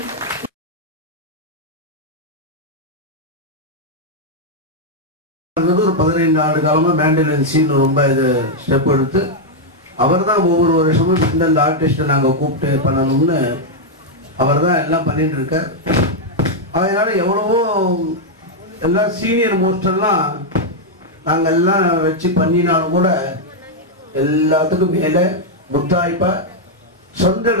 ஒரு 15 ஆண்டு காலமா மேண்டலின் சீன் ரொம்ப இது ஸ்டெப் எடுத்து அவர் தான் ஒவ்வொரு வருஷமும் இந்தந்த ஆர்டிஸ்ட்டை நாங்கள் கூப்பிட்டு பண்ணணும்னு அவர் தான் எல்லாம் பண்ணிட்டு இருக்கார். அதனால எவ்வளவோ எல்லாம் சீனியர் மோஸ்டெல்லாம் நாங்கள் எல்லாம் வச்சு பண்ணினாலும் கூட எல்லாத்துக்கும் மேலே முத்தாய்ப்பா சொந்த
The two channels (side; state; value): both; normal; correlation -0.01